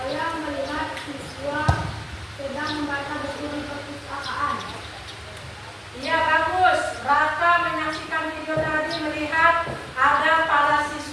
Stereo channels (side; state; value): both; identical; correlation 1.00